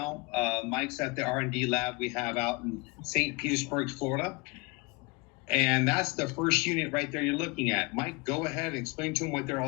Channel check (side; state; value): right; quieter; 27.9 dB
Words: Mike's at the R&D lab we have out in St. Petersburg, Florida. And that's the first unit right there you're looking at. Mike, go ahead and explain to them what they're